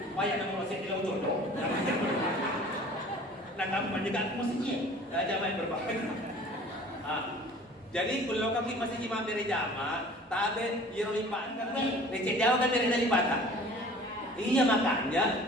Payah nomor 1 dilau jodoh. Nah kamu menjaga musiknya. Jangan berbahagia. Jadi kalau kami masih cuma dari jamaah, tabe yero lipat kan, leceh jauh kan dari lipatan. Iya makanya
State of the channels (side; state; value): both; normal; correlation 0.46